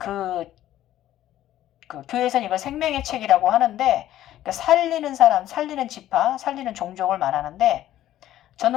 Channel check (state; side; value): quieter; right; 13.1 dB